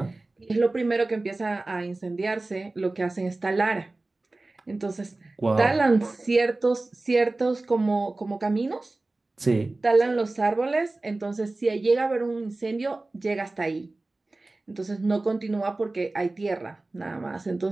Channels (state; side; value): quieter; left; 3.1 dB